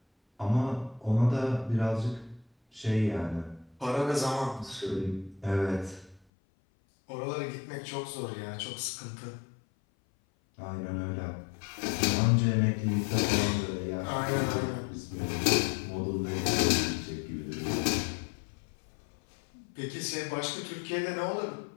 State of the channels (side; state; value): right; drops out; at 6.2 s